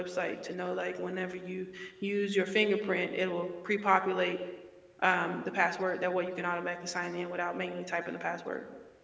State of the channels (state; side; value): identical; both; correlation 1.00